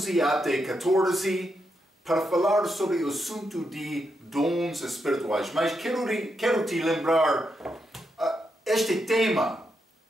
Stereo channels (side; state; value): both; normal; correlation 0.83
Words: até 14 para falar sobre o assunto de dons espirituais. Mas quero te lembrar este tema